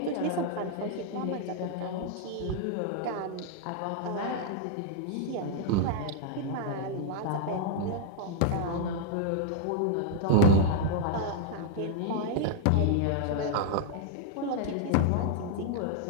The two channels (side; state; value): both; different; correlation 0.00